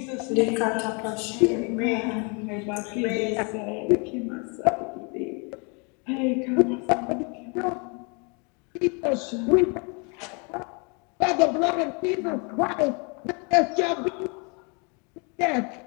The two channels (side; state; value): right; quieter; 33.8 dB